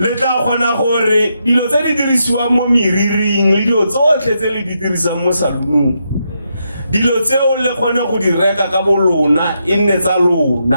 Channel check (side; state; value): both; inverted; correlation -0.81